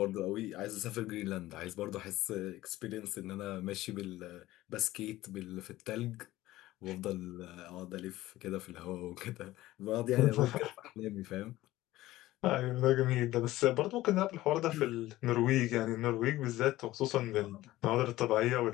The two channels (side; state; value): right; quieter; 16.5 dB